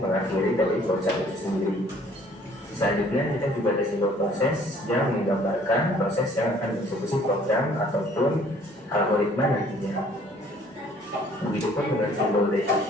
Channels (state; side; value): normal; both; correlation 0.57